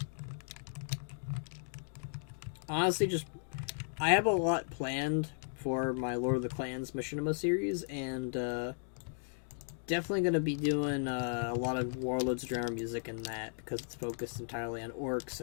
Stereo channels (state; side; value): silent; right; digital silence